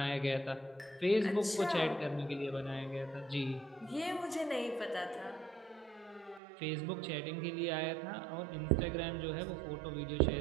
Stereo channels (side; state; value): left; drops out; at 6.4 s